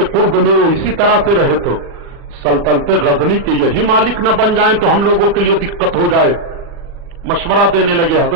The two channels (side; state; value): left; late; 40 ms